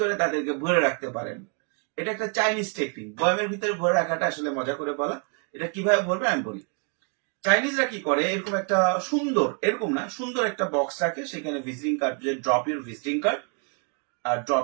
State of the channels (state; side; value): quieter; left; 37.3 dB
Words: তাদেরকে ভরে রাখতে পারেন। এটা একটা চাইনিজ টেকনিক। বয়ামের ভিতরে ভরে রাখাটা আসলে মজা করে বলা। এটা কিভাবে ভরবে আমি বলি। চাইনিজরা কি করে, এরকম একটা সুন্দর, এরকম না, সুন্দর একটা বক্স রাখে, সেখানে ভিজিটিং কার্ড, যে ড্রপ ইউর ভিজিটিং কার্ড আর